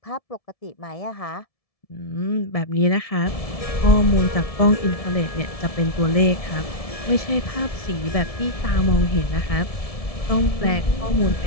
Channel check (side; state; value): right; late; 1.7 ms